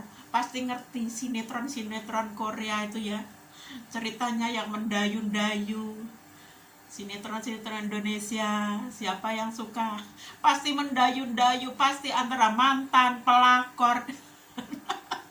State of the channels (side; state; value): both; identical; correlation 1.00